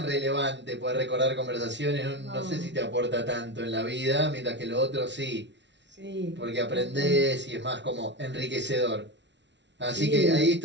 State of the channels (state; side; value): late; left; 0.52 ms